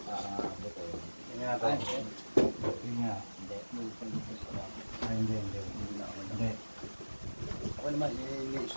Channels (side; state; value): both; inverted; correlation -1.00